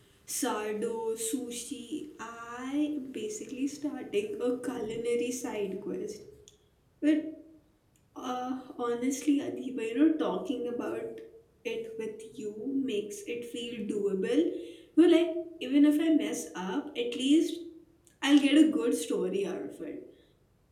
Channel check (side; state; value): both; identical; correlation 1.00